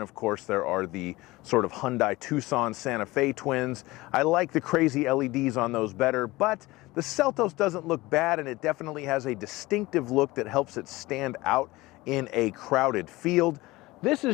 of course there are the sort of Hyundai Tucson Santa Fe twins. I like the crazy LEDs on those better, but the Seltos doesn't look bad, and it definitely has a distinctive look that helps it stand out in a crowded field. This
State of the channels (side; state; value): right; quieter; 20.2 dB